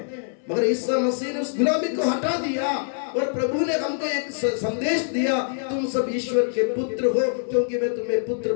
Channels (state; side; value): silent; right; 62 dB below the other